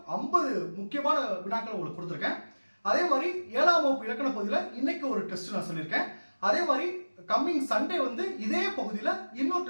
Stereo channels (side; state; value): both; inverted; correlation -1.00